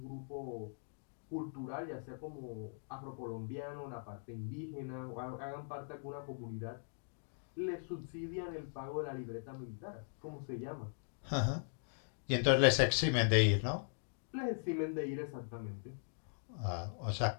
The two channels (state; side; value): silent; right; digital silence